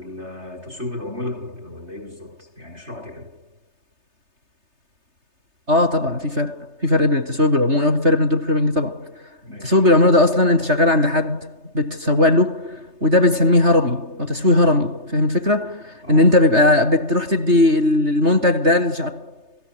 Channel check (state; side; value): late; left; 3.3 ms